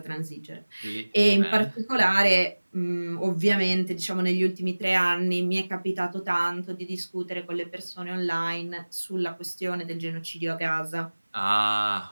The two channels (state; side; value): inverted; both; correlation -1.00